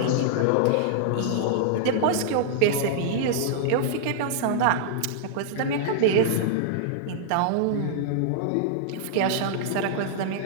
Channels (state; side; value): different; both; correlation -0.01